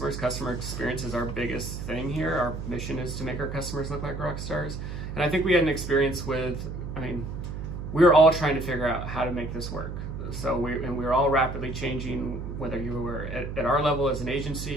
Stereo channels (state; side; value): noise; right; hum, 6 dB below the sound